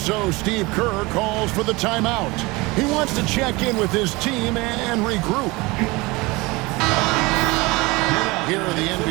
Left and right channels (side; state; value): left; quieter; 23.4 dB